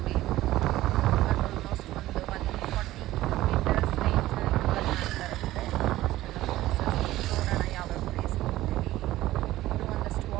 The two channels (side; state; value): left; quieter; 15.8 dB